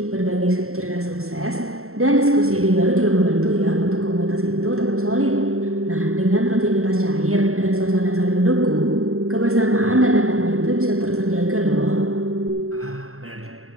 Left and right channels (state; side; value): late; left; 0.63 ms